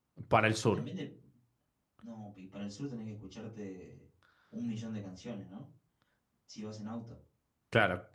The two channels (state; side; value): identical; both; correlation 1.00